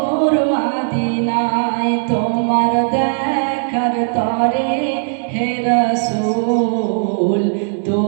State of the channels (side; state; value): left; silent; digital silence